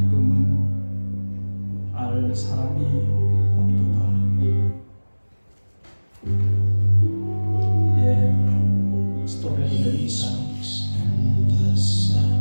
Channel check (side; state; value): both; inverted; correlation -1.00